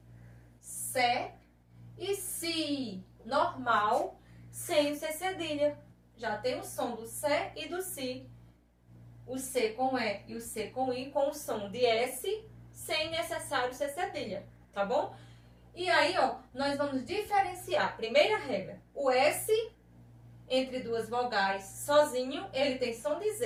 Sé e Si normal sem o C cedilha. Já tem o som do Sé e do Si. O C com E e o C com I com o som de S sem necessário C cedilha, tá bom? E aí, ó, nós vamos diferenciar. Primeira regra, o S entre duas vogais sozinho, ele tem som de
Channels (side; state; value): both; identical; correlation 1.00